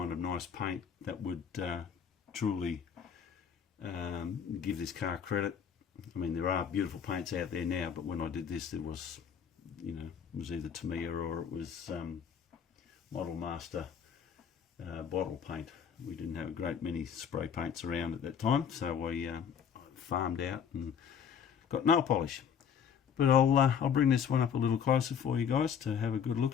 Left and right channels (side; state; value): right; quieter; 7.6 dB